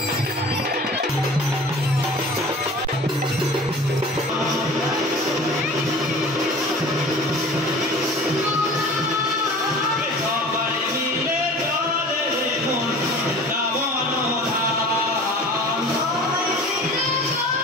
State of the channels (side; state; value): both; normal; correlation 0.42